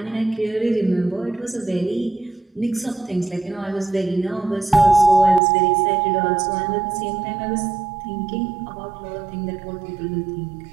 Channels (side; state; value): left; drops out; at 5.4 s